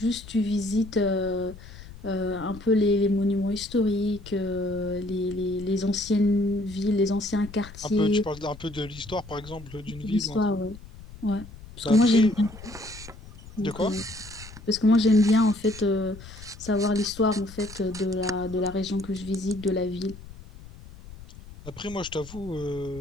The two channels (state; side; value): noise; left; rumble, 17 dB below the sound